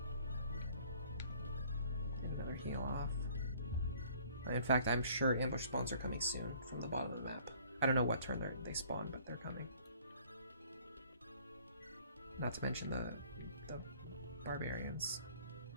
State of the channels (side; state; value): both; inverted; correlation -0.56